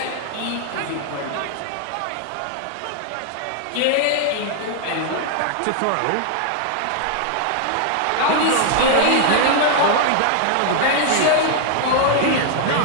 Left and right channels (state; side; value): different; both; correlation 0.00